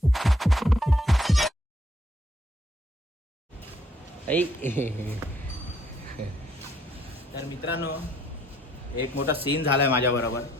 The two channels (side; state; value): both; normal; correlation 0.67